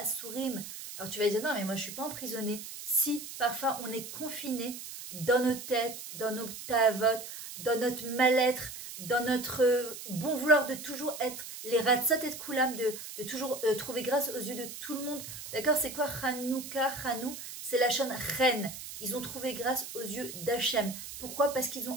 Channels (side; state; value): right; noise; hiss, 10 dB below the sound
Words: Alors tu vas dire, non, mais moi je ne suis pas emprisonné. Si, parfois, on est confiné dans nos têtes, dans nos tavot, dans notre mal-être, dans notre bon vouloir de toujours être les ratzot et koulam, de toujours trouver grâce aux yeux de tout le monde. D'accord? C'est quoi Hanouka, Hanou? C'est la chaîne reine. Ils ont trouvé grâce aux yeux d'Hachem. Pourquoi? Parce qu'ils